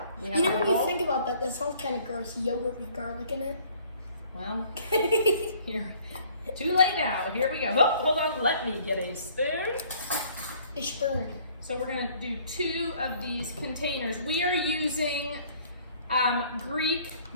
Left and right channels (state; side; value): inverted; both; correlation -0.58